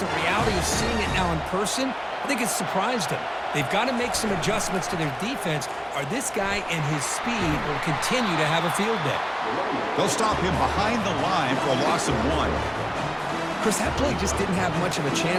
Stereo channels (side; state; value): both; identical; correlation 1.00